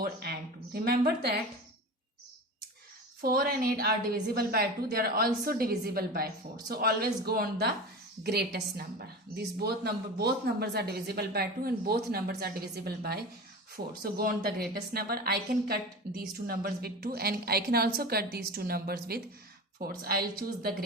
and 2. Remember that 4 and 8 are divisible by 2. They are also divisible by 4. So always go on the greatest number. These both numbers are divisible by 2 and both numbers are divisible by 4. So go on the greatest number. I can cut these two numbers with 2 and I can also cut these two numbers with 4. So I'll choose the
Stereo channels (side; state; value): both; normal; correlation 0.31